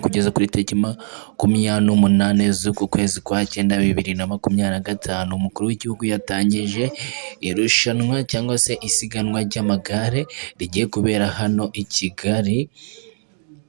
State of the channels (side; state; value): left; silent; 65 dB below the other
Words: kuri tariki 28 z'uku kwezi kwa cyenda 2025 umukuru w'igihugu yatangije irushanwa cyangwa se isiganwa ry'amagare rigiye kubera hano i Kigali.